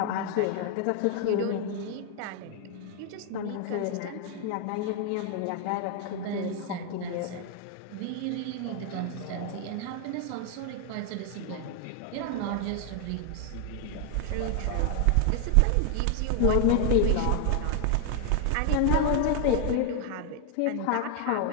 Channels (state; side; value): different; both; correlation 0.00